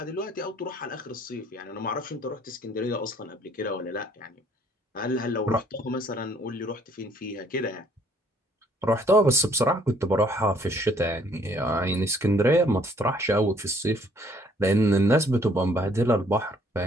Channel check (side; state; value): both; normal; correlation 0.62